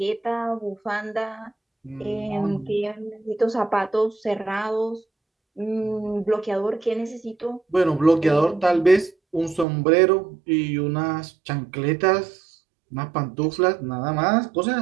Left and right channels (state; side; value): drops out; left; at 9.7 s